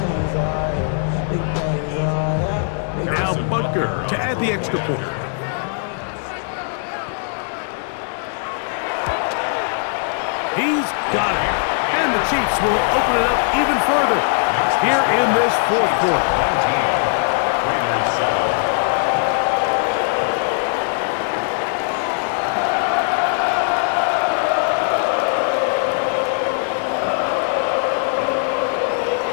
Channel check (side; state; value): right; silent; digital silence